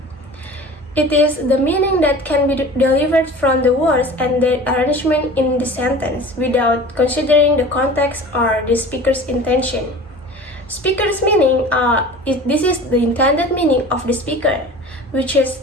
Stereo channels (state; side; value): normal; both; correlation 0.39